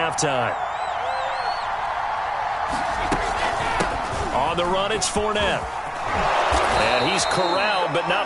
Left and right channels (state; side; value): identical; both; correlation 1.00